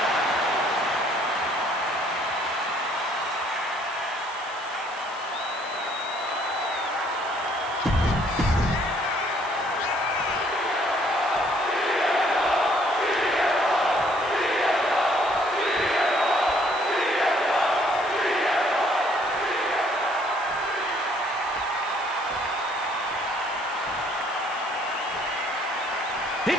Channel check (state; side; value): noise; right; hiss, 21 dB below the sound